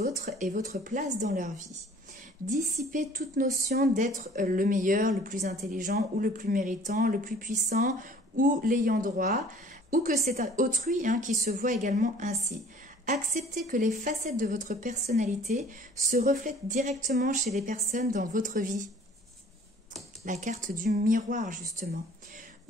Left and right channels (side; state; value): both; normal; correlation 0.51